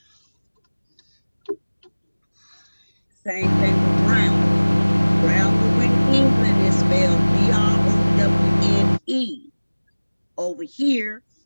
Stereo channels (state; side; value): inverted; both; correlation -1.00